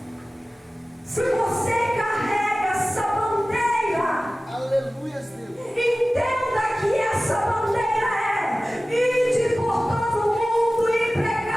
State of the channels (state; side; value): normal; both; correlation 0.97